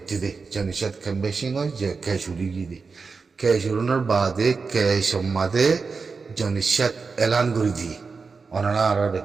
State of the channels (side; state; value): left; quieter; 4.7 dB